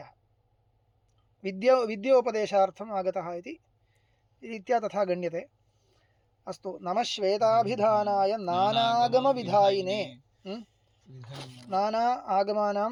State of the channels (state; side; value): identical; both; correlation 1.00